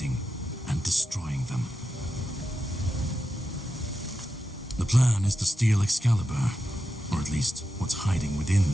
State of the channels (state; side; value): normal; both; correlation 0.89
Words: and destroying them. The plan is to steal Excalibur, or at least what's hiding